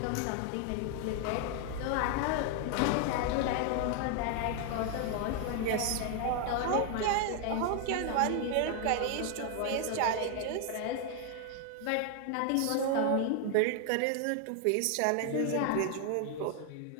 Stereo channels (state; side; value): different; both; correlation 0.00